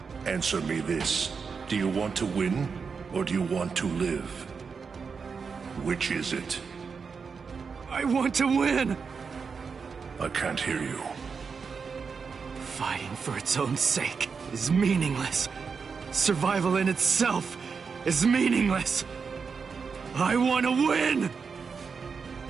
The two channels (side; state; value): left; quieter; 5.5 dB